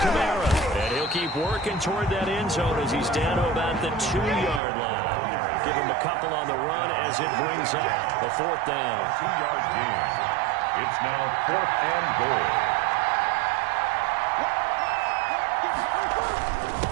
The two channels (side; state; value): left; drops out; at 4.6 s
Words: Kamara. And he'll keep working toward that end zone as he's down to about the 2-yard line. Give him a couple on the run as it brings up a 4th down. 2-yard gain. It's now 4th and goal.